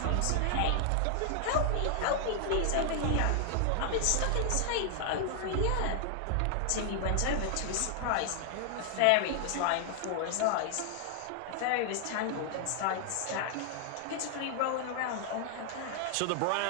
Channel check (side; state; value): both; different; correlation 0.00